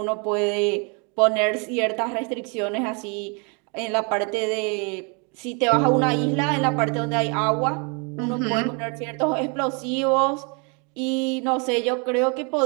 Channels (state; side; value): quieter; left; 34.6 dB